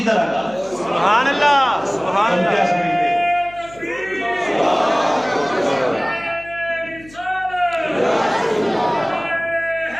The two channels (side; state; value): left; noise; hum, 22 dB below the sound